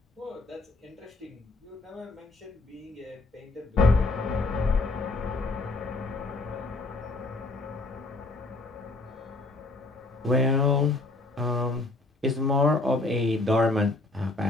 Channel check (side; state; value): right; quieter; 3.0 dB